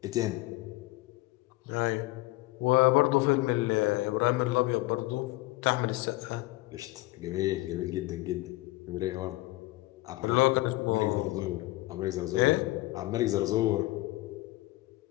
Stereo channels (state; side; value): quieter; right; 19.8 dB